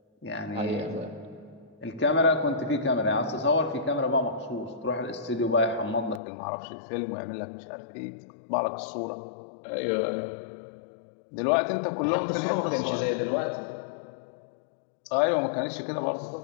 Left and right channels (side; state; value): right; drops out; at 6.2 s